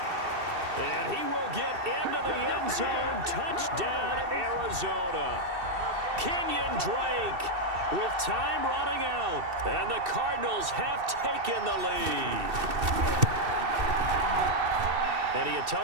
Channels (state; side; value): late; left; 2.7 ms